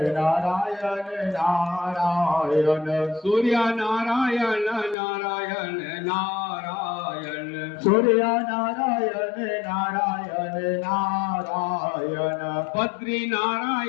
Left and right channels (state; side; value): drops out; right; at 5.0 s